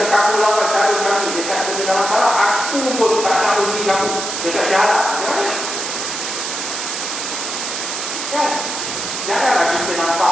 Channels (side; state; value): right; noise; hiss, 4 dB below the sound